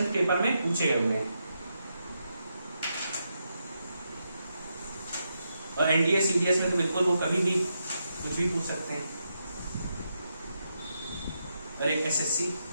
पेपर में पूछे गए हुए हैं। और एनडीए सीडीएस में तो बिल्कुल वो कभी भी कुछ भी पूछ सकते हैं। और एक एसएससी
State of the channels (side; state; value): both; inverted; correlation -0.83